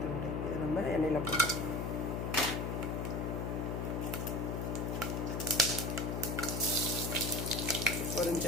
துண்டு. இதை நம்ம எண்ணெயில் போட்டுக்கலாம்.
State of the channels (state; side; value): noise; left; hum, 1 dB below the sound